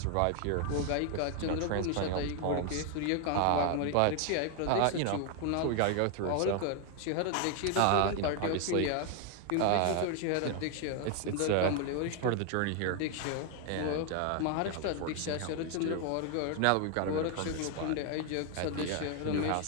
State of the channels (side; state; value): both; different; correlation 0.01